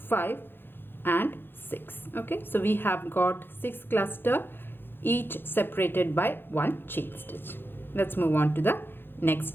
and 6. Okay, so we have got 6 cluster, each separated by 1 chain stitch. Let's move on to the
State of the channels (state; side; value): late; right; 0.10 ms